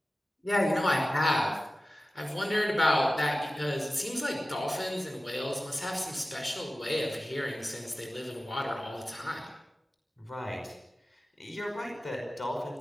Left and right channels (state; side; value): normal; both; correlation 0.95